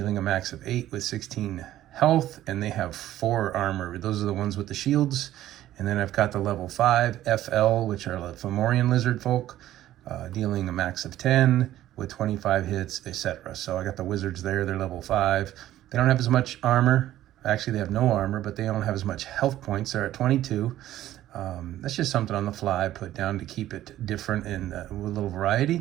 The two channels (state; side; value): quieter; left; 13.5 dB